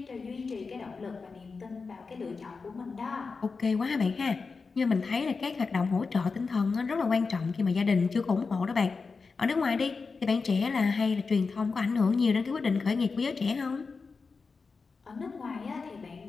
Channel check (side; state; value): right; quieter; 4.6 dB